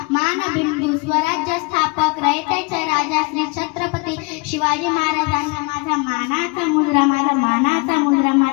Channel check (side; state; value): right; quieter; 27.5 dB